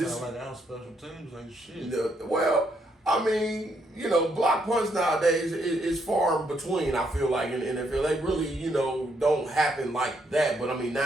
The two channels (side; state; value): both; normal; correlation 0.74